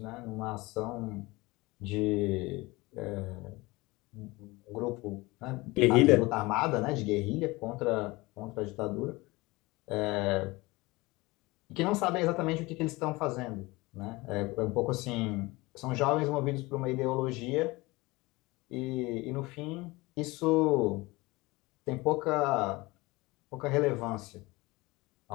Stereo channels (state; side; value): quieter; right; 22.3 dB